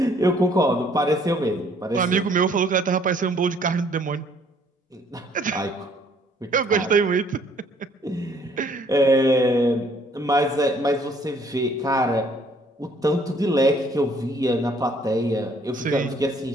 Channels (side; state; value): both; normal; correlation 0.62